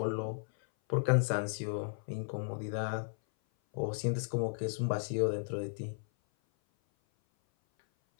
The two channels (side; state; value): right; silent; 55 dB below the other